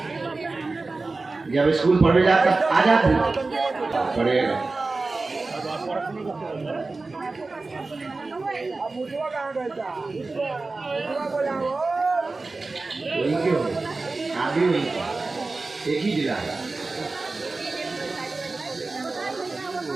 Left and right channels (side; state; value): left; quieter; 3.6 dB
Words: जब स्कूल पढ़ने जाता आ जाती पढ़ेगा। वही क्यों आगे वही एक ही जिला है।